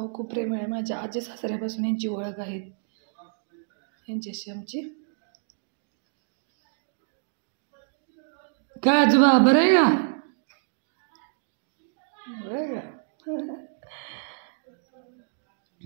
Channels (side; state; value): left; silent; digital silence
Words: खूप प्रेमळ आहे. माझ्या आजी सासऱ्यापासून यांची ओळख आहे. यांच्याशी आमची काय आजोबा बरं आहे का? बरं का?